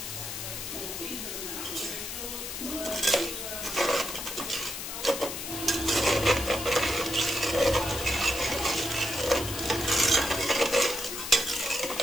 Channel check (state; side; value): noise; left; hiss, 6 dB below the sound